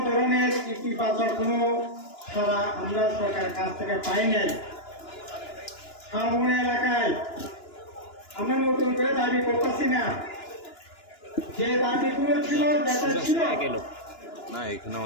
ধরনের ইতিবাচক কোনো সাড়া আমরা সরকারের কাছ থেকে পাই নাই। শাহমনি এলাকায় আমরা নতুন করে দাবি করতেছি না, যে দাবিগুলো ছিল যেটা ছিল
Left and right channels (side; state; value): right; late; 2.9 ms